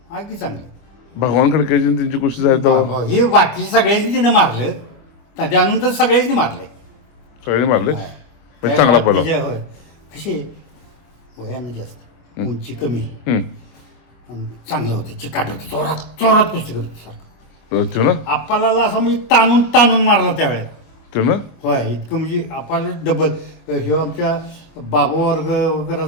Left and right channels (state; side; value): late; right; 25 ms